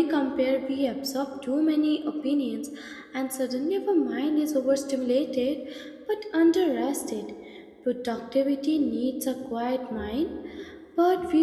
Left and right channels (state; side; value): identical; both; correlation 1.00